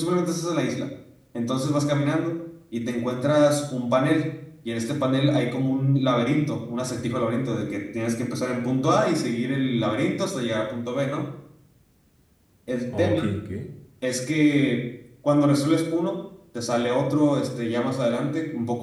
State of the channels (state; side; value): identical; both; correlation 1.00